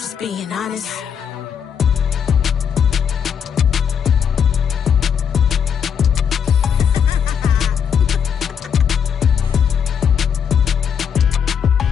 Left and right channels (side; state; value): right; quieter; 7.6 dB